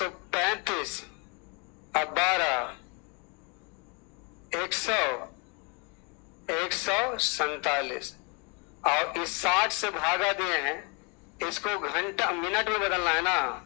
और 12, 100, 147। और इस 60 से भागा दिए हैं, इसको घंटा मिनट में बदलना है ना,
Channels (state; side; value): quieter; right; 33.0 dB